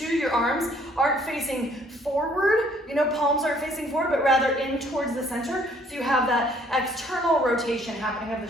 your arms aren't facing forward, palms aren't facing forward, but rather in towards the center, so you have that external rotation happening of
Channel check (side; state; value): both; normal; correlation 0.61